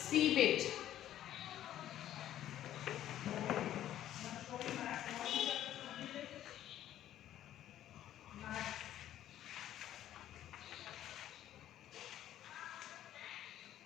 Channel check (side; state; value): right; quieter; 12.2 dB